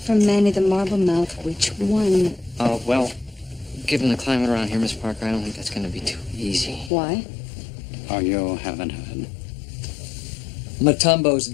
from Manny the Marble Mouth which one. Well, given the climate around here, Miss Parker, I don't think that's going to be too easy. Why? Oh, you haven't heard. Matumbo's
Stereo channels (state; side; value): drops out; right; at 6.9 s